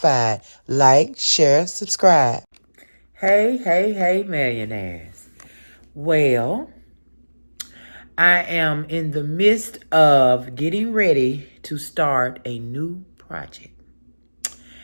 Like, share, subscribe. Hey, hey, hey, millionaires. Well, I am in the midst of getting ready to start a new project.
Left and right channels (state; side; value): inverted; both; correlation -1.00